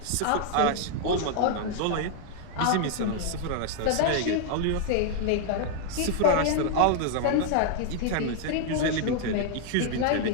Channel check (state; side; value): different; both; correlation 0.00